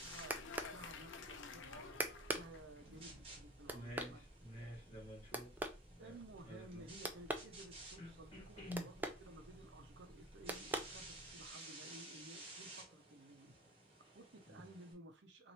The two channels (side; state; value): both; normal; correlation 0.39